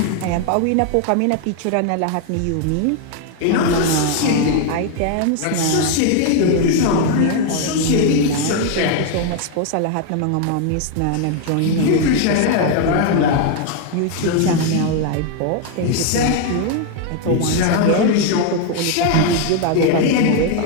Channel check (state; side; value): different; both; correlation 0.01